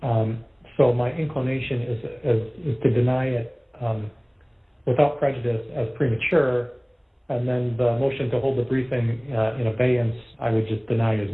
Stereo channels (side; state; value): both; identical; correlation 1.00